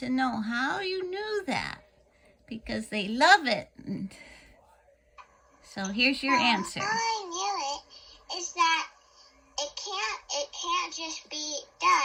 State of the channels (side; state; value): both; identical; correlation 1.00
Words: know how you knew that. Because they love it. So here's your answer. How I knew it is that it can't just be